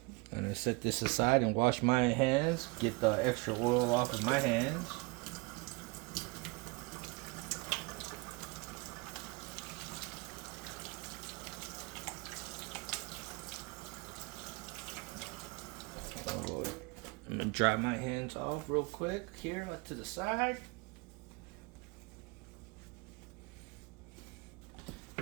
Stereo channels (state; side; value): quieter; left; 28.3 dB